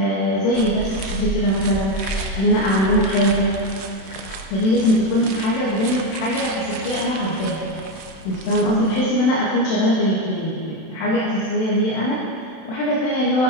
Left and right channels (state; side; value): late; right; 31 ms